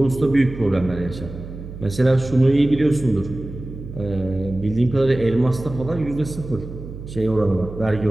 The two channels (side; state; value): right; noise; hum, 12 dB below the sound